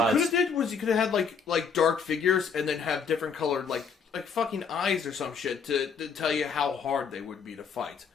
you could have did was you could have had like dark figures and then have different colored like fucking eyes or some shit to tell you how hard they would be to fight.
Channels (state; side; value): quieter; right; 5.8 dB